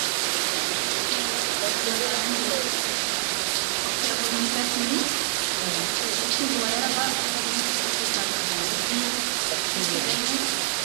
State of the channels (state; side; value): silent; left; digital silence